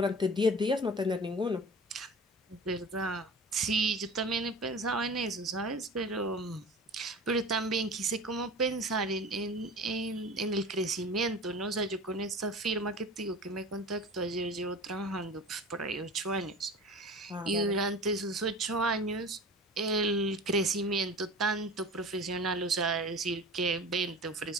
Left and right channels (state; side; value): normal; both; correlation 0.37